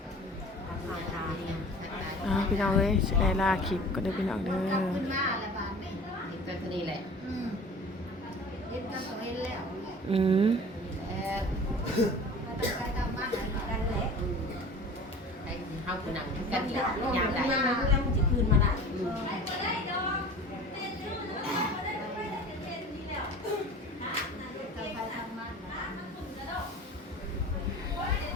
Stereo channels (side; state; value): both; normal; correlation 0.41